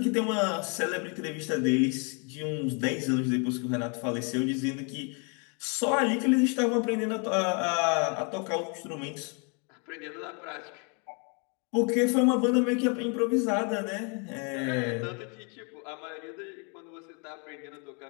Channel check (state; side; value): quieter; right; 35.8 dB